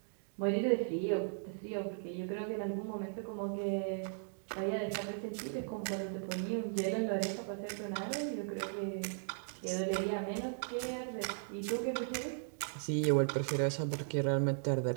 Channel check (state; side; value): silent; left; digital silence